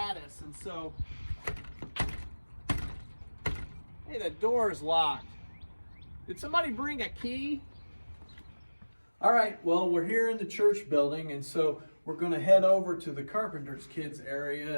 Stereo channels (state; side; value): inverted; both; correlation -1.00